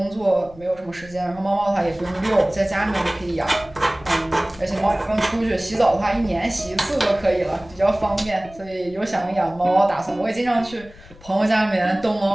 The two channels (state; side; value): noise; left; rumble, 21 dB below the sound